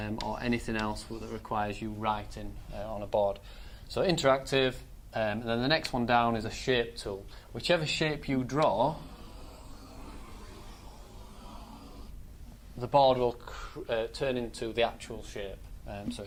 anything else that requires you writing on a board. So interactive. And then the next one down is a shape tool. Whichever shape you draw, the board will turn into the actual shape. So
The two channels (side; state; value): both; identical; correlation 1.00